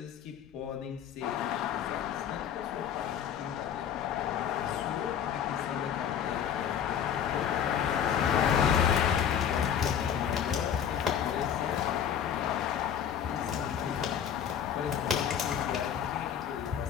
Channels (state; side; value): quieter; right; 8.9 dB